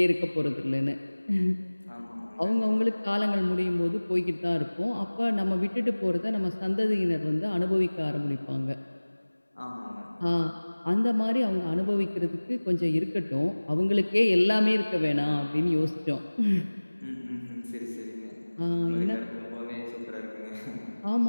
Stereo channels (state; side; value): inverted; both; correlation -1.00